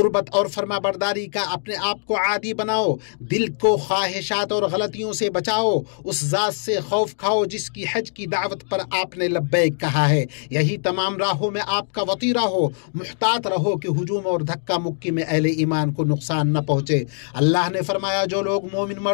اور فرما برداری کا اپنے آپ کو عادی بناؤ، دل کو خواہشات اور غلطیوں سے بچاؤ، اس ذات سے خوف کھاؤ جس کی حج کی دعوت پر آپ نے لبیک کہا ہے۔ یہی تمام راہوں میں آپ کا وطیرہ ہو، محتاط رہو کہ ہجوم اور دھکا مکی میں اہل ایمان کو نقصان نہ پہنچے۔ اللہ نے فرمایا جو لوگ مومن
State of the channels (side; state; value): right; silent; digital silence